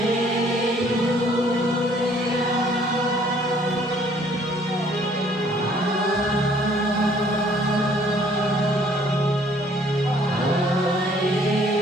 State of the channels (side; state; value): both; normal; correlation 0.60